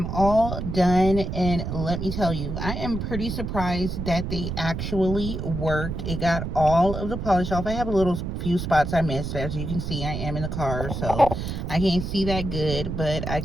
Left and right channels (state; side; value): noise; right; rumble, 4 dB below the sound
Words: all done, and let me tell you, I am pretty surprised that they actually worked. It got all of the polish off. I have a little few spots I missed. As you can see, I am in the car, so I can't see that good, but I